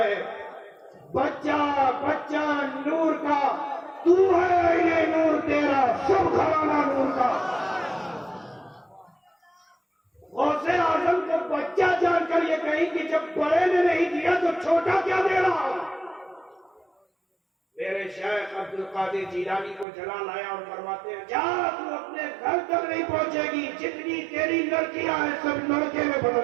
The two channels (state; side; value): drops out; left; at 19.9 s